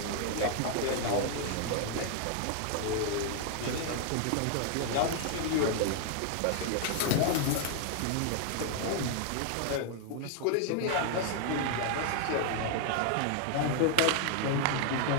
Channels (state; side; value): different; both; correlation 0.00